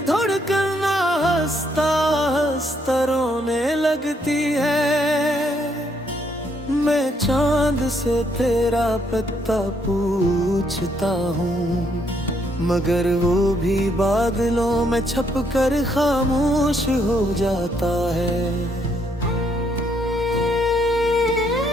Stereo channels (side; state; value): both; normal; correlation 0.72